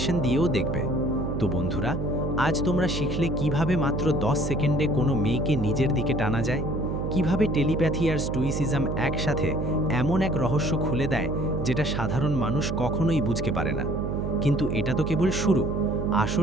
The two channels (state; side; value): noise; right; hum, 2 dB below the sound